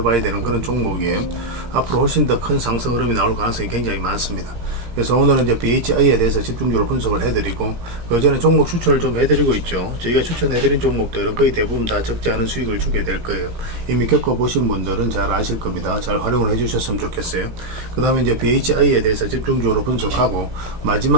되는 그런 종목이에요. 앞으로 훨씬 더 큰 상승 흐름이 나올 가능성이 굉장히 많습니다. 그래서 오늘은 이제 BHI에 대해서 집중적으로 분석을 해드리고, 그 전에 종목 추천을 좀 해드리고 있죠. 저희가 추천해드린 종목들은 거의 대부분 다 적지 않은 수익을 주게 될 거예요. 이미 겪어보신 분들은 잘 아실 겁니다. 잘 활용을 해주셨으면 좋겠어요. 그 다음에 이제 BHI에 대해서 집중적으로 분석하고,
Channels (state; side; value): late; left; 17 ms